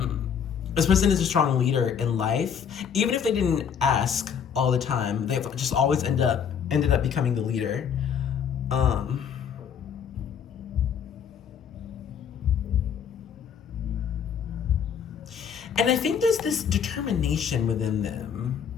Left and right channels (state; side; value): quieter; right; 7.6 dB